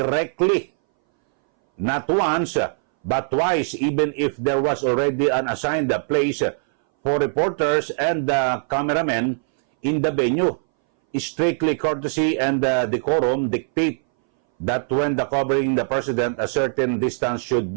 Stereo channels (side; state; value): left; silent; 62 dB below the other